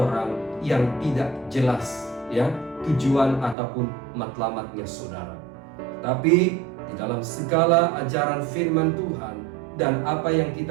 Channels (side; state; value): left; drops out; at 3.6 s